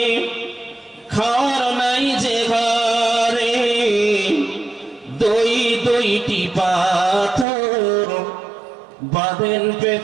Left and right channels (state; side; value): drops out; left; at 7.5 s